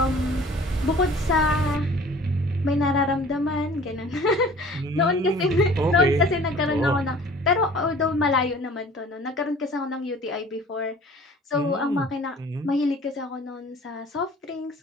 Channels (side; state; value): both; normal; correlation 0.47